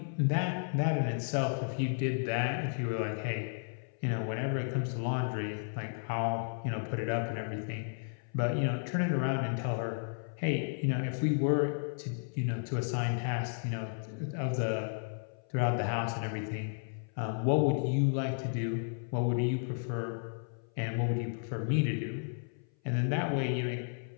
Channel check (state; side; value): silent; right; 56 dB below the other